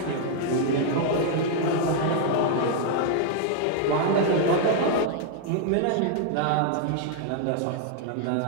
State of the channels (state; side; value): different; both; correlation 0.00